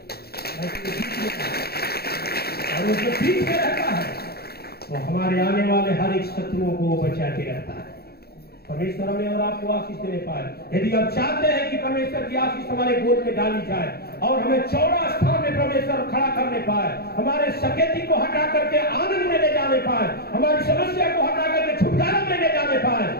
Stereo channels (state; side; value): late; right; 0.46 ms